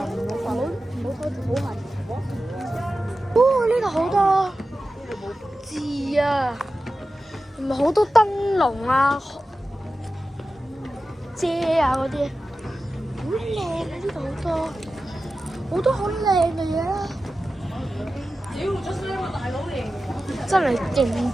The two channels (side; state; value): both; normal; correlation 0.94